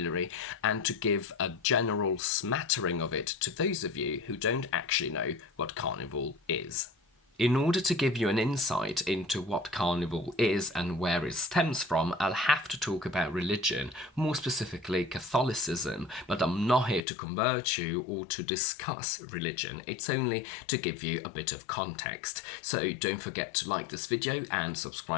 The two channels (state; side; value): drops out; right; at 17.1 s